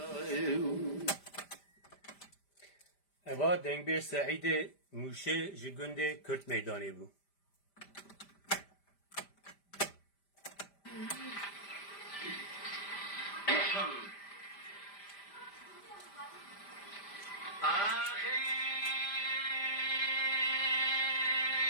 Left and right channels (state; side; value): late; right; 5.0 ms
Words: اوا دنگ بیر سعید موشه جگنده کرد میدانی بو